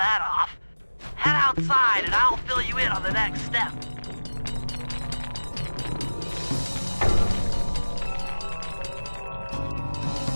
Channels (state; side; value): inverted; both; correlation -1.00